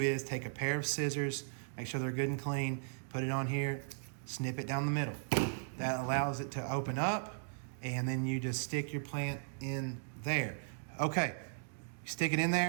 take a pair of scissors, make sure they're good and clean, put it on here, snip it down the middle. That allows it to open up, and then you just stick your plant in there. Okay, stick it in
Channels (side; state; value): left; silent; digital silence